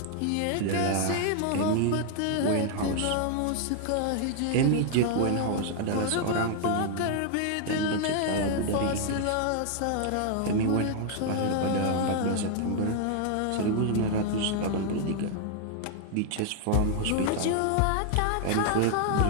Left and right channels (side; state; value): both; different; correlation 0.00